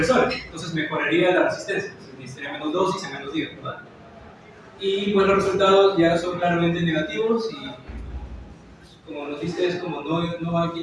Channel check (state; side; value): identical; both; correlation 1.00